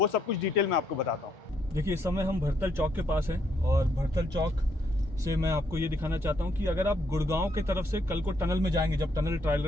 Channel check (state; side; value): normal; both; correlation 0.73